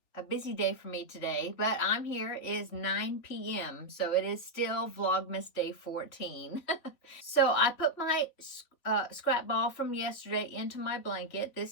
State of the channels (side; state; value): right; late; 3.5 ms